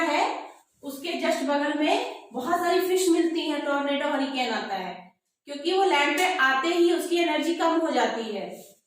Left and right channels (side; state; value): both; identical; correlation 1.00